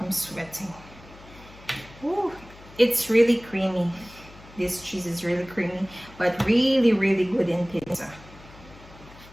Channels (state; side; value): noise; left; hum, 21 dB below the sound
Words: sweating. Ooh, it's really creamy. This cheese is really creamy, but really, really good in pizza.